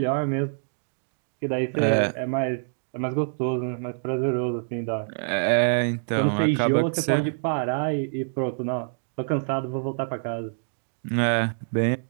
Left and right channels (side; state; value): left; silent; digital silence